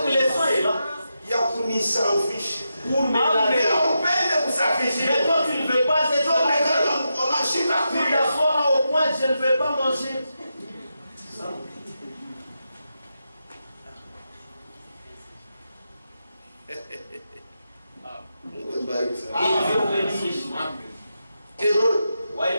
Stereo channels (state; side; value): inverted; both; correlation -0.87